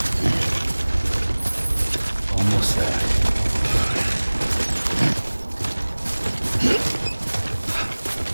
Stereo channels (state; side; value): inverted; both; correlation -1.00